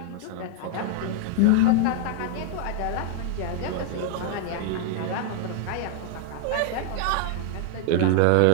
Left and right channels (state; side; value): different; both; correlation 0.00